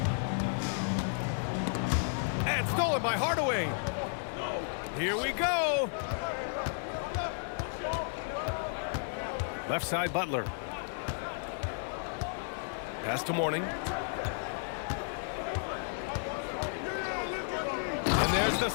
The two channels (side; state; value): right; silent; 56 dB below the other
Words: And stolen by Hardaway. Here we go. Left side, Butler. Pass to Mourning. And there's the